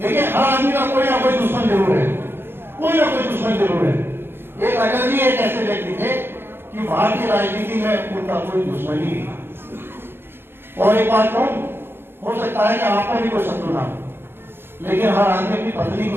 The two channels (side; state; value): left; late; 0.11 ms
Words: हर आदमी का कोई ना कोई दुश्मन जरूर है, कोई ना कोई दुश्मन जरूर है। एक अटल जी एक ऐसे व्यक्ति थे कि भारतीय राजनीति में उनका कोई दुश्मन ही नहीं। और एक बात कहूं, हो सकता है कि आपका भी कोई शत्रु ना हो, लेकिन हर आदमी अपनी पत्नी को